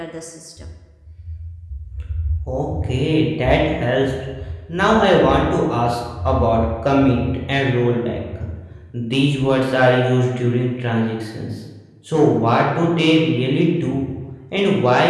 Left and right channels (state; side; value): identical; both; correlation 1.00